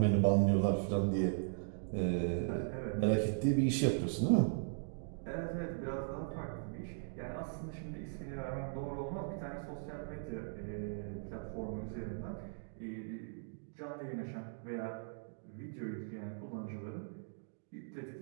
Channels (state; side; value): silent; left; digital silence